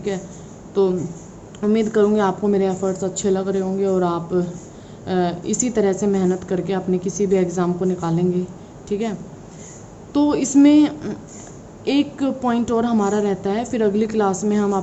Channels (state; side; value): identical; both; correlation 1.00